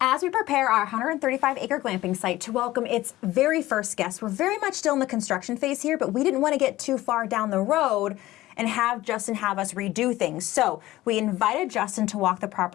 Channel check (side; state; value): right; quieter; 16.6 dB